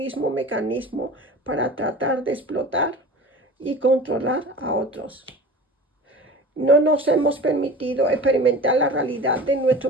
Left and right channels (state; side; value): normal; both; correlation 0.37